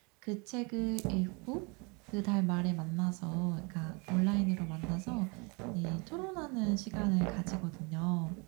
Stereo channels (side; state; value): left; quieter; 30.8 dB